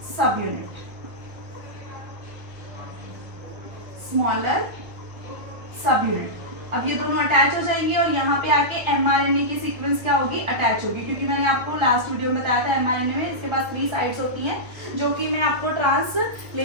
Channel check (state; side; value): late; left; 1.6 ms